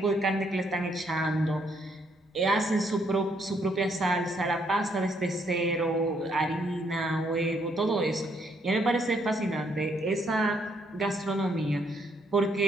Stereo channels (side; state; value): both; normal; correlation 0.71